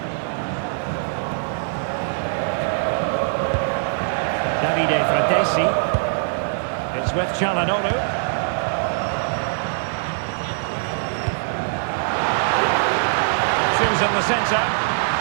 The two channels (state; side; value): silent; left; digital silence